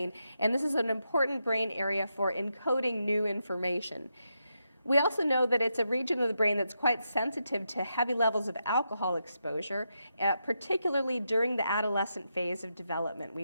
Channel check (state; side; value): inverted; both; correlation -0.84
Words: and this is an important brain area for encoding new information. We also know that it's a region of the brain that's quite sensitive to heavy levels of alcohol exposure, particularly during the adolescent phase of development.